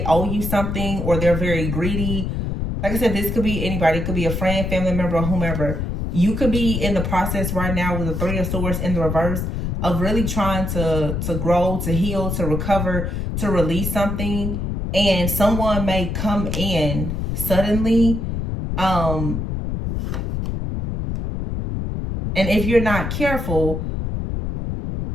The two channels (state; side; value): noise; left; rumble, 2 dB below the sound